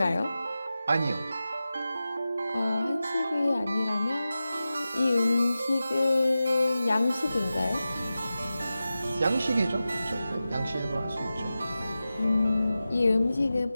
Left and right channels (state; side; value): inverted; both; correlation -0.94